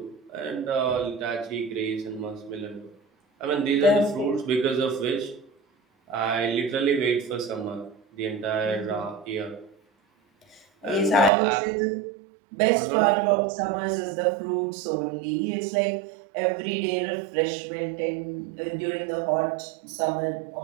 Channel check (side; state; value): left; drops out; at 11.3 s